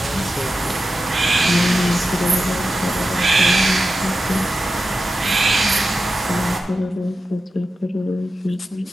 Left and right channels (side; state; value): both; normal; correlation 0.91